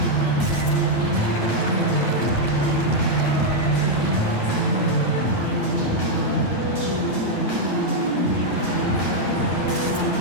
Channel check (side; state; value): right; late; 9.4 ms